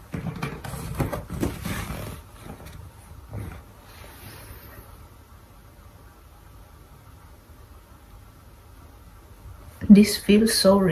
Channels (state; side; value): identical; both; correlation 1.00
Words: This feels so